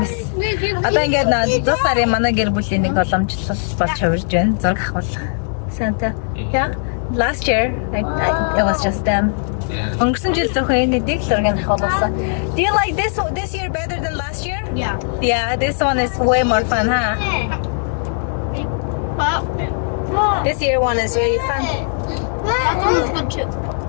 Одоо ингээд 100 сарын манай гэр бүлийн нэг боломжлол болж хувирж байна. Зураг авах. Santa. Yeah. Last year it was just them. Өнгөрсөн жил зөвхөн энэ дэг зургийг авахулсан. Do you like this year better than last year? Yeah. Yeah, this one is way more fun, huh? This year one is very fun. That one's fun too.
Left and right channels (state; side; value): silent; right; 67 dB below the other